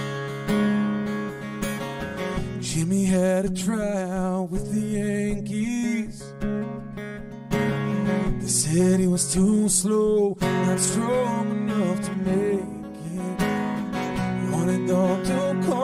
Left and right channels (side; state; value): both; identical; correlation 1.00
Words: Jimmy had a tryout with the Yankees. They said he was too slow, not strong enough to make it. He wanted all to